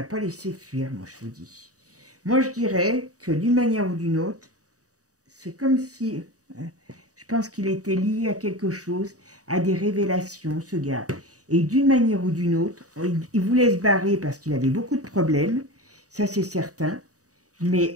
pas laissé fuir, moi je vous dis. Moi je dirais que d'une manière ou d'une autre, c'est comme si... je pense qu'il était lié à quelque chose, à des révélations, ce gars. Et d'une manière ou d'une autre, il voulait se barrer parce qu'il avait beaucoup de problèmes. Ça, c'est certain.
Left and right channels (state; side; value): late; left; 0.66 ms